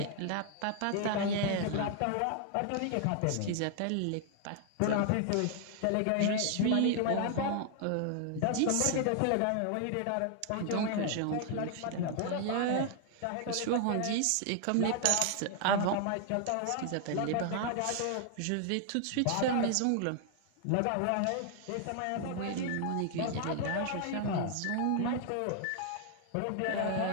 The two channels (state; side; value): different; both; correlation 0.00